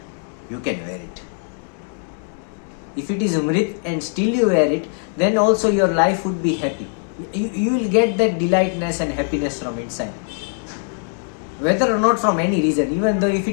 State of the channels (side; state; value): right; silent; 58 dB below the other